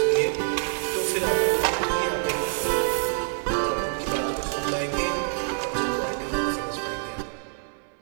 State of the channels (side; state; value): left; silent; digital silence